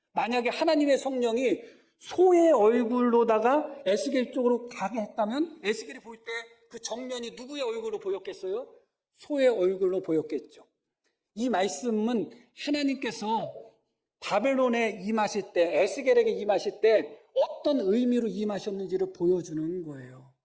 만약에 하나님의 성령이 소의 얼굴로다가 에스겔 쪽으로 가게 했다면 에스겔이 볼 때 그 정면이 누구의 얼굴로 보였겠어요? 소의 얼굴로 보였겠죠. 이 말씀은 하나님께서 바벨론에 임하실 때, 에스겔에게 임하실 때 어떤 의미로 임하셨는지를 보여주는 거예요.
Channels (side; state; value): both; identical; correlation 1.00